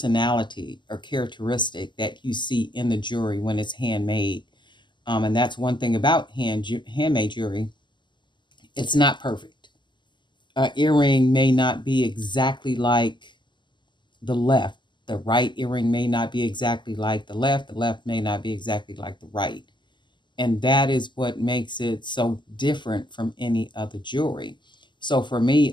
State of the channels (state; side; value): late; right; 0.22 ms